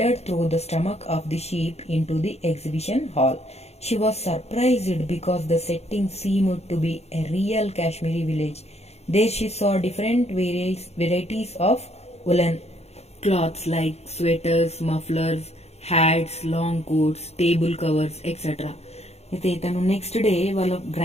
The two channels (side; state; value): right; late; 0.31 ms